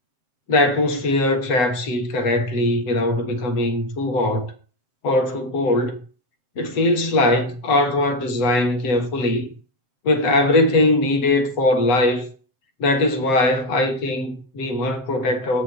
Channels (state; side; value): late; right; 7.6 ms